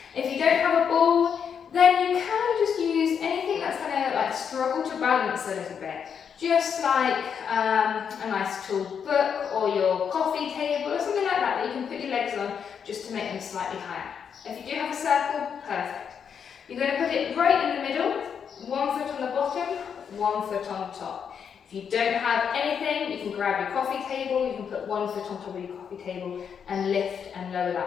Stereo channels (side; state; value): right; quieter; 7.3 dB